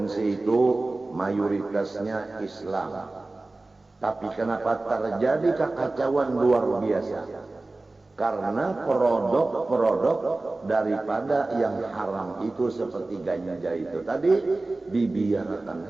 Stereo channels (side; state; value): left; quieter; 3.1 dB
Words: itu mayoritasnya Islam, tapi kenapa terjadi kekacauan luar biasa? Karena produk-produk daripada yang haram itu seperti ganja itu tadi dibiarkan